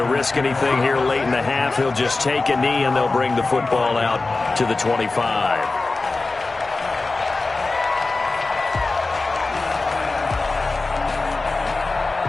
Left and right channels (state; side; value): quieter; right; 3.5 dB